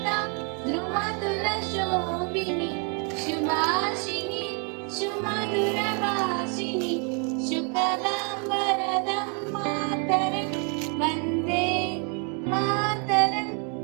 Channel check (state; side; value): quieter; left; 37.3 dB